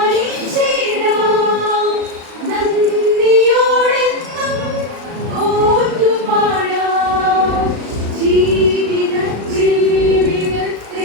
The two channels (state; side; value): late; left; 36 ms